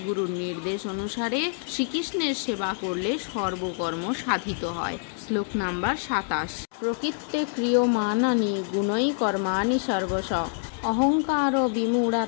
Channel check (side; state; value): right; silent; 61 dB below the other